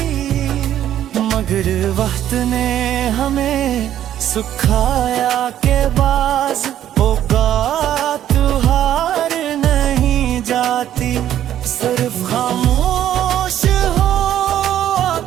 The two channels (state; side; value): quieter; left; 11.4 dB